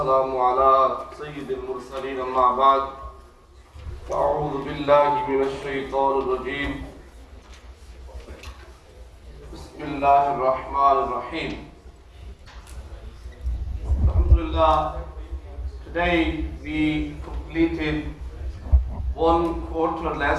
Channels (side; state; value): both; identical; correlation 1.00